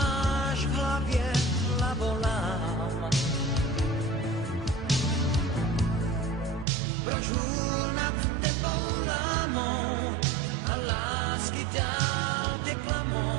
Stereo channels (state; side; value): drops out; left; at 6.7 s